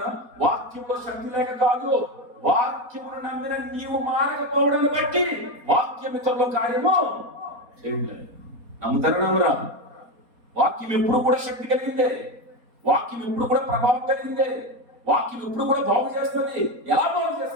వాక్యంలో శక్తి లేక కాదు, వాక్యమును నమ్మిన నీవు మారకపోవడాన్ని బట్టి వాక్యం ఇతరుల కార్యము చేయలేదు. నమ్ముతారా నమ్మరా? వాక్యం ఎప్పుడు కూడా శక్తి కలిగిందే, వాక్యం ఎప్పుడు కూడా ప్రభావం కలిగిందే, వాక్యం ఎప్పుడు కూడా బాగు చేస్తుంది. ఎలా బాగు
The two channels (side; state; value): left; late; 4.2 ms